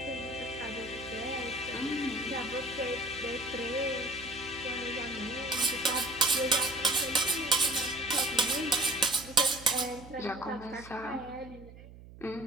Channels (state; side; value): noise; right; hum, 18 dB below the sound